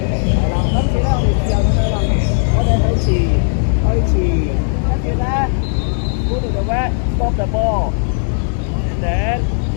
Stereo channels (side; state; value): right; silent; digital silence